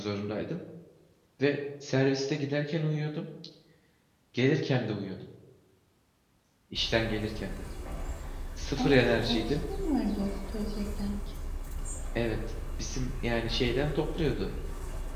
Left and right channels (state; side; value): identical; both; correlation 1.00